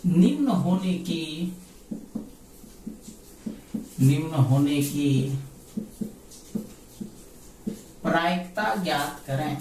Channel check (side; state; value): both; identical; correlation 1.00